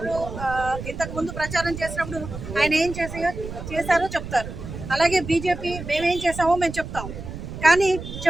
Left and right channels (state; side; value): noise; right; rumble, 10 dB below the sound